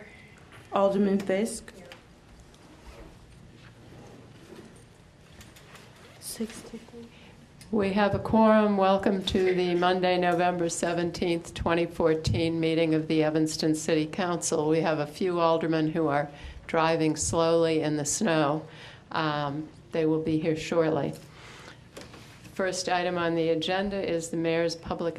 Alderman Fisk. 63. We have a quorum. Welcome to the Monday, November 17th, 2014 meeting of the Evanston City Council. We have a few aldermen who are driving slowly in the snow. They will be here shortly. First item on the agenda is the mayor's public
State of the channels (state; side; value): identical; both; correlation 1.00